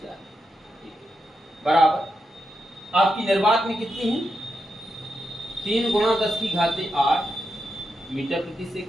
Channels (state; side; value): normal; both; correlation 0.86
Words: चाल, बराबर आपकी निर्वात में कितनी है, 3 गुणा 10 की घाते 8 मीटर प्रति